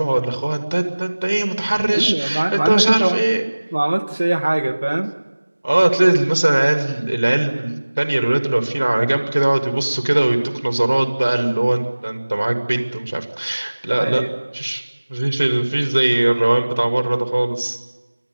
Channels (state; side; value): inverted; both; correlation -1.00